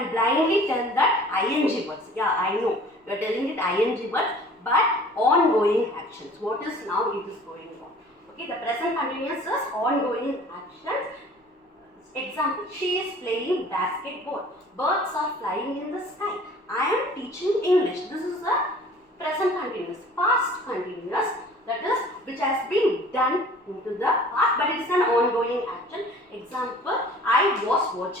blindly tell that ing words. Yeah, I know you are telling it ing words, but ongoing actions. What is now it is going on. Okay, the present continuous is ongoing actions. Example, she is playing basketball. Birds are flying in the sky. I am teaching English. This is a present continuous. Past continuous, that is which has been done into the past, but it is an ongoing action. Example, I was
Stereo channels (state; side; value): normal; both; correlation 0.49